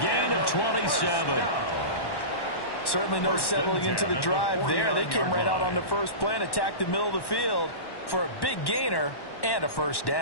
gain of 27. Certainly no settling into the drive there. They came right out on the first play and attacked the middle of the field for a big gainer and a first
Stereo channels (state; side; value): late; right; 1.1 ms